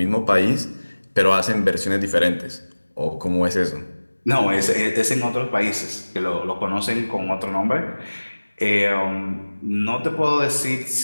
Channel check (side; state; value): both; inverted; correlation -1.00